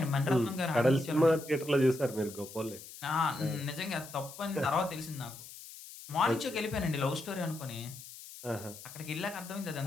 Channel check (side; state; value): left; noise; hiss, 15 dB below the sound